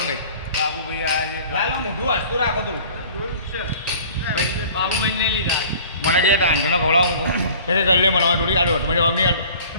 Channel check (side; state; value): both; inverted; correlation -0.47